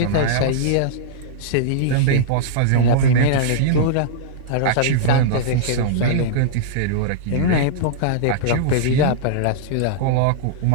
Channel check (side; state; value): both; different; correlation -0.02